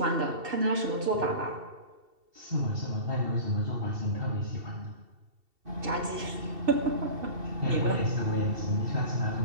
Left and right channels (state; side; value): late; left; 2.7 ms